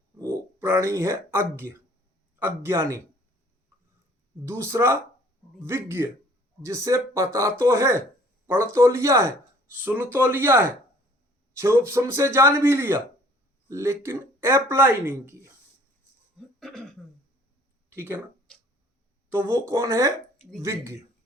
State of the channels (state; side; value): normal; both; correlation 0.55